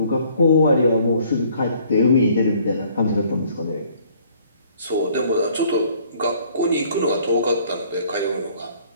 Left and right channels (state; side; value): inverted; both; correlation -0.59